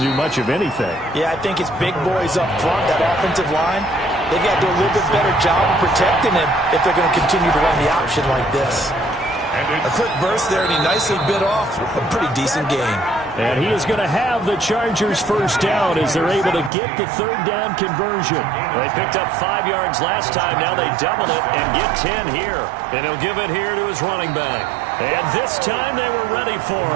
do much of anything. Yeah, I think it's big boys up front, that offensive line. They've got to do a little bit better job of protecting him if they're going to continue to run the option like this. A quick burst there, and he nicely bit off a pretty decent game. And he is going to have the Chargers first down as they're able to get the 3rd down conversion. They picked up 5 yards last time. Now they double it and get 10 here. And he'll give it here to his running back. And this time they were ready for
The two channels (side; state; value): left; drops out; at 16.7 s